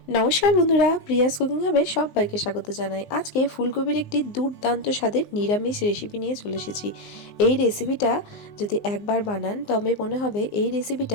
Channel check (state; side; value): late; right; 19 ms